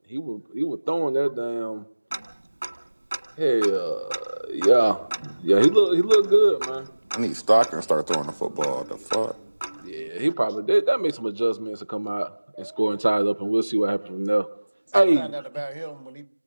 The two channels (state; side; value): inverted; both; correlation -1.00